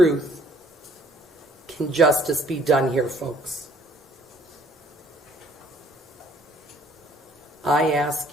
can justice be done here, folks. I ask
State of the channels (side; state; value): both; normal; correlation 0.60